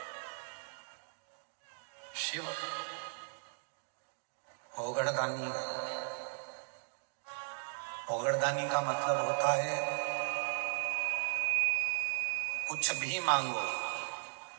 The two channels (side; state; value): left; silent; digital silence